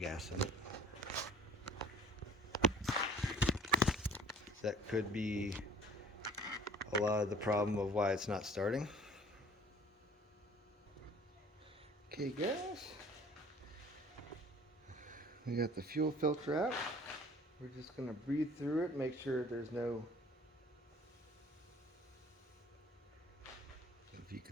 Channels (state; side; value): normal; both; correlation 0.51